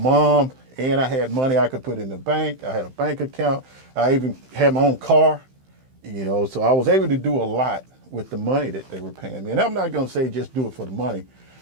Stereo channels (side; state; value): left; late; 15 ms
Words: and I had money I could put in the bank. I had a bank account. I even had my own car, so I was able to do a lot with the money that they were paying me. And I'm not going to say just do it for the money,